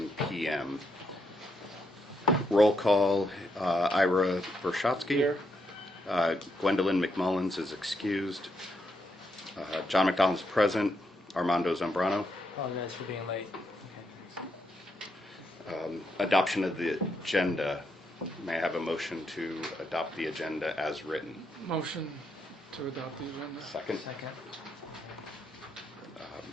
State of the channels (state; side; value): normal; both; correlation 0.79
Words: p.m. Roll call, Ira Vershotsky. Here. Gwendolyn McMullins is excused. John McDonald's present. Armando Zambrano. Apologize for being late. Okay, Adoption of the agenda. May I have a motion to adopt the agenda as written? Motion to adopt the agenda. Second. Second.